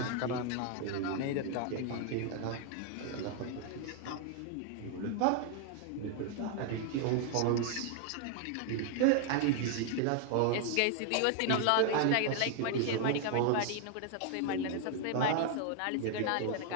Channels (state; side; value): different; both; correlation 0.00